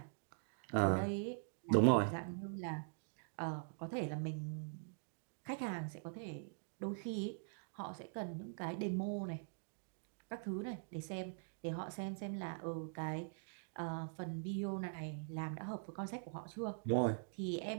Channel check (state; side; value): silent; left; digital silence